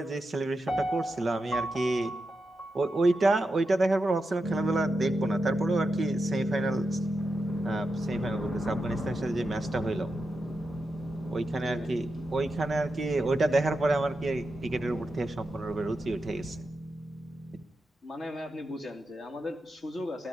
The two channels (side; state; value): both; normal; correlation 0.88